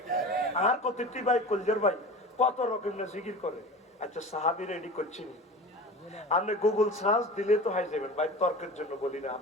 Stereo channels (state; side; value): normal; both; correlation 0.35